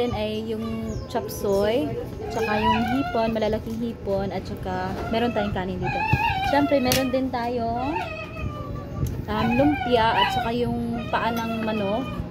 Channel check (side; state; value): both; identical; correlation 1.00